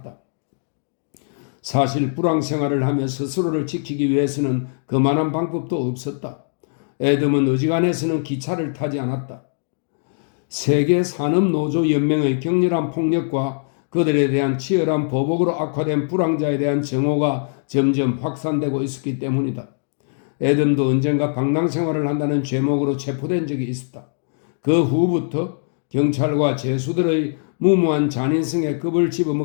사실 불황 생활을 하며 스스로를 지키기 위해서는 그만한 방법도 없었다. 에덤은 어지간해서는 기차를 타지 않았다. 세계 산업노조연맹의 격렬한 폭력과 그들에 대한 치열한 보복으로 악화된 불황자에 대한 정오가 점점 확산되고 있었기 때문이다. 에덤도 언젠가 방랑 생활을 한다는 죄목으로 체포된 적이 있었다. 그 후부터 경찰과 죄수들의 무모한 잔인성에 겁을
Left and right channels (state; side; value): silent; right; digital silence